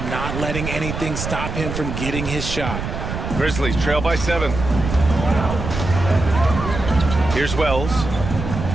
not letting anything stop him from getting his shot. Grizzlies trail by 7. Here's Wells.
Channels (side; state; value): right; noise; rumble, 5 dB below the sound